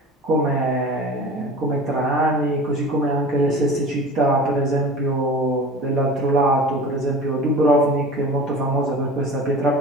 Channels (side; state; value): both; normal; correlation 0.37